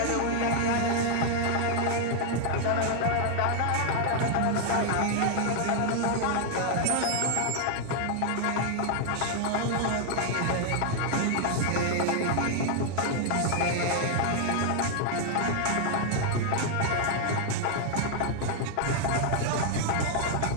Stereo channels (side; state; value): both; different; correlation 0.00